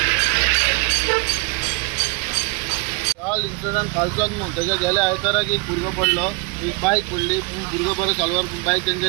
काल incident कालचोच न्हू त्याच्या गेल्या आयताराक एक भुरगो पडलो, एक बायक पडली, भुरगो बरो चालवार बायक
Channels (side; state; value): left; quieter; 29.2 dB